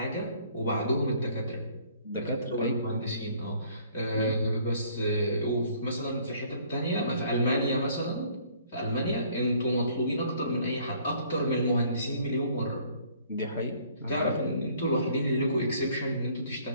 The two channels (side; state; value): both; inverted; correlation -0.59